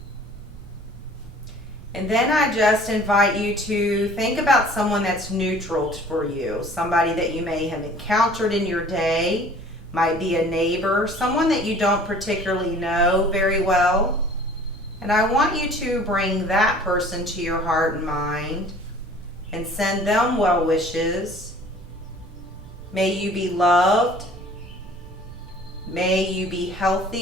And then I just invite you to think about someone that's neutral for you, somebody that you may have encountered in your day, might be a neighbor, someone that you don't particularly know very well. And I want you to bring that person to your heart and mind and send them well wishes. May you be loved. May you be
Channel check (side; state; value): right; noise; rumble, 19 dB below the sound